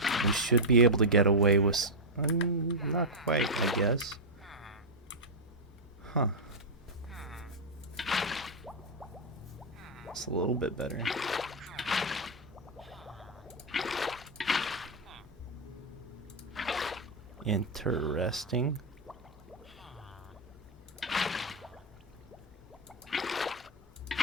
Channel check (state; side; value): normal; both; correlation -0.03